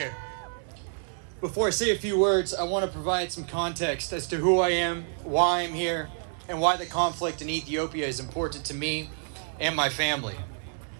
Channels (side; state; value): left; silent; digital silence